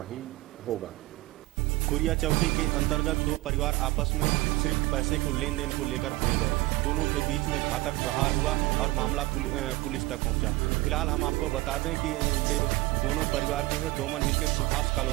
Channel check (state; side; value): quieter; left; 20.0 dB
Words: होगा। कुरिया चौकी के अंतर्गत दो परिवार आपस में सिर्फ पैसे को लेन देन को लेकर भिड़ गए। दोनों के बीच में घातक प्रहार हुआ और मामला पुलिस तक पहुंचा। फिलहाल हम आपको बता दें कि ये दोनों परिवार जो है डोमन हिल के सुभाष